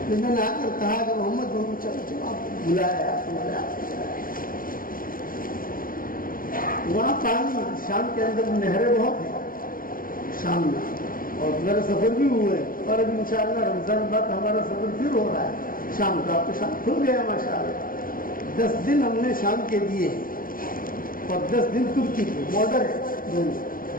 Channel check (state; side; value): late; right; 0.41 ms